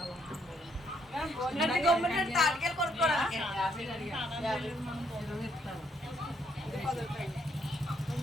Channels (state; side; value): normal; both; correlation 0.72